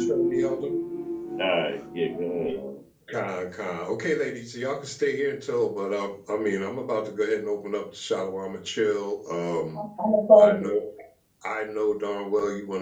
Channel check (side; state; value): both; identical; correlation 1.00